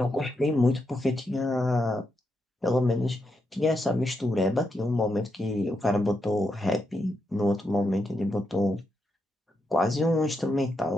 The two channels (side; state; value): both; normal; correlation 0.83